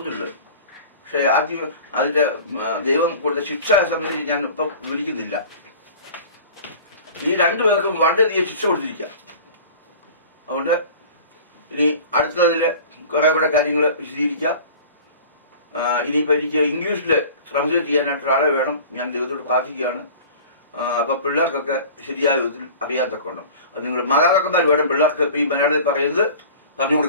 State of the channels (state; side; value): inverted; both; correlation -0.41